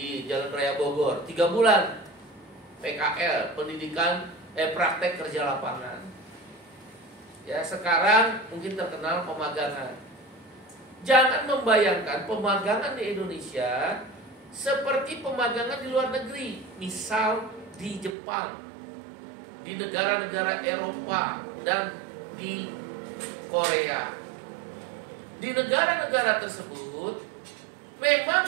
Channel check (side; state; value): left; drops out; at 18.2 s